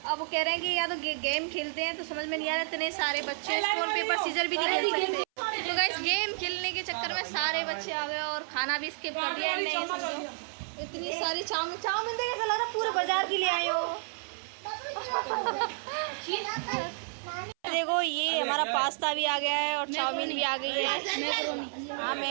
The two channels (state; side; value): silent; left; 57 dB below the other